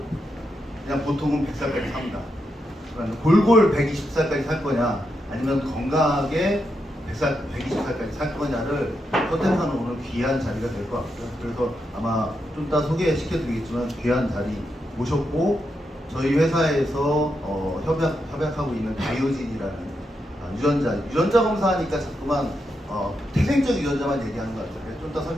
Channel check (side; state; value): both; normal; correlation 0.84